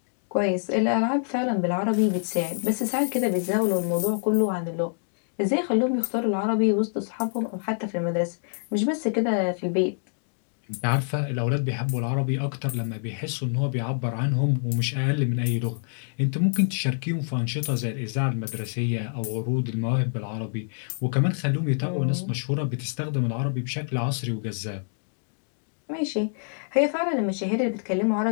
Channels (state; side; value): silent; right; digital silence